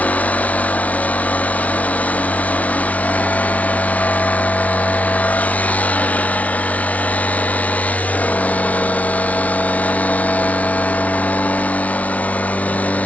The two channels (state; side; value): late; right; 0.068 ms